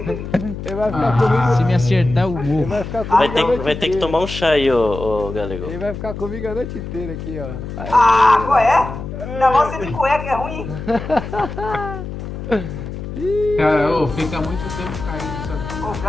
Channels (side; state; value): left; noise; hum, 8 dB below the sound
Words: vai ficar comigo. Se me acertar, eu morro. Ele vai ficar comigo a noite Vai ter que inteira. tomar um chá aí, ô Galego. Ele vai ficar comigo a noite inteira aqui, ó. Aí, Ah, qual é? Ainda mais você de cueca, é ruim. Cara, ô, fica muito tempo caído isso aqui. Pô, o